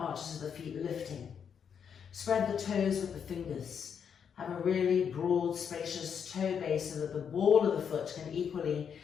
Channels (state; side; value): quieter; right; 7.4 dB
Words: of the feet lifting. Spread the toes with the fingers. Have a really broad, spacious toe base so that the ball of the foot can equally